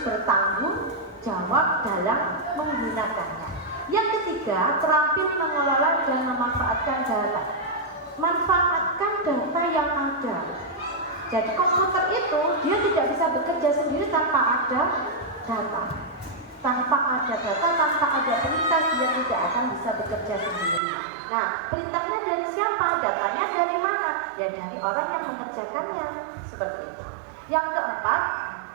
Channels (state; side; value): drops out; left; at 20.8 s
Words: bertanggung jawab dalam menggunakannya. Yang ketiga, terampil mengelola dan memanfaatkan data. Manfaatkan data yang ada. Jadi komputer itu dia tidak bisa bekerja sendiri tanpa ada data. Tanpa ada data, tanpa ada perintah, dia tidak akan bisa bekerja sendiri. Nah, perintahnya dari siapa? Datanya dari mana? Ya dari orang yang mengerjakannya. Seperti itu. Yang keempat,